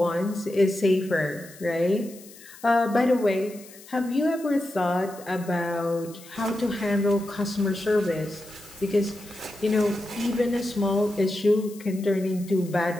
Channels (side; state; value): left; noise; hiss, 20 dB below the sound